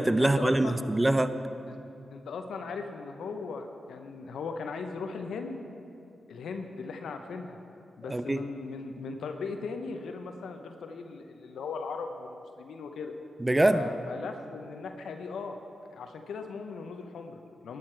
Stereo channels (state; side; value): normal; both; correlation 0.92